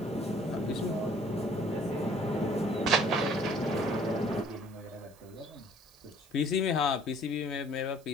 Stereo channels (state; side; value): noise; right; hiss, 27 dB below the sound